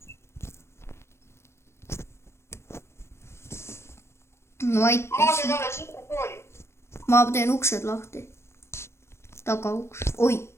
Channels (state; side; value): late; right; 0.13 ms